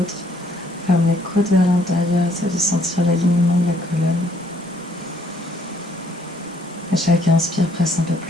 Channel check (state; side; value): normal; both; correlation 0.66